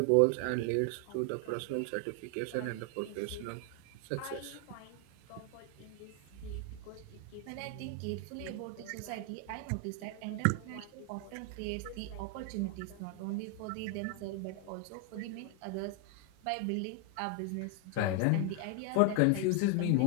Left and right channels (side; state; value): both; different; correlation 0.00